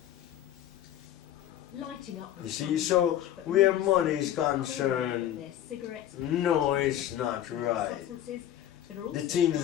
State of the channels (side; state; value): right; quieter; 11.7 dB